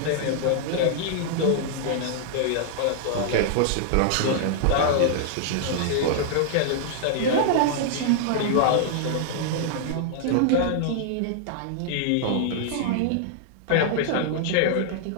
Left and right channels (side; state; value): both; different; correlation -0.01